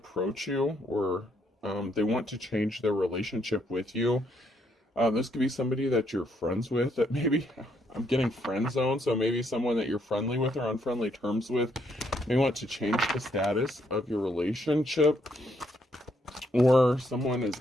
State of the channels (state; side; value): normal; both; correlation 0.73